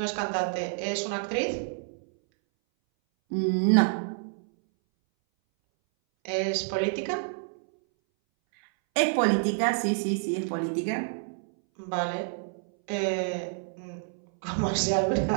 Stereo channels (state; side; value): silent; left; 59 dB below the other